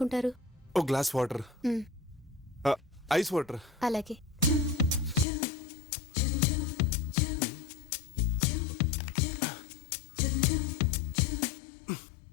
ఓ గ్లాస్ వాటర్. మ్, ఐస్ వాటర్. అలాగే.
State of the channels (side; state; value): right; drops out; at 5.2 s